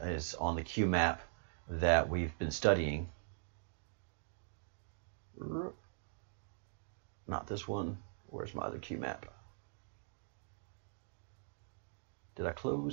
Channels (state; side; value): silent; left; digital silence